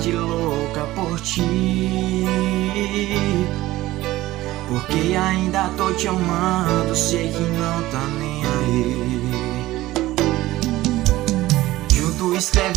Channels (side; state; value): left; quieter; 16.9 dB